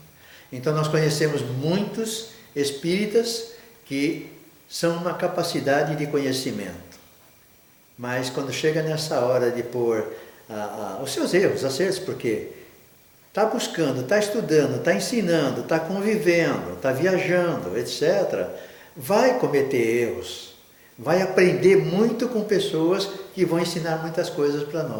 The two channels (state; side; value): identical; both; correlation 1.00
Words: Então nós conhecemos muitos espíritas que são uma capacidade de conhecimento. Mas quando chega nessa hora de pôr os seus erros, acertos, porque está buscando, está estudando, está ensinando, está convivendo, está viajando, etc., vai cometer erros, vai aprender muito com pessoas que vão ensinar muitas coisas para